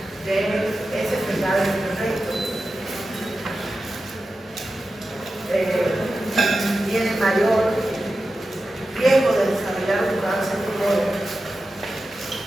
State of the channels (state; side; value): normal; both; correlation 0.92